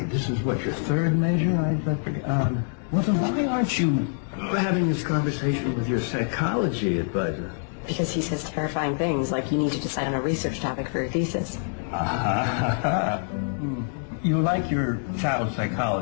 This is what, your third major? I thought, well, then why aren't you having this conversation with your psychology advisor? Because he says terrifying things like you need to decide on a research topic for your thesis. You like your child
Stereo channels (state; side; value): silent; right; digital silence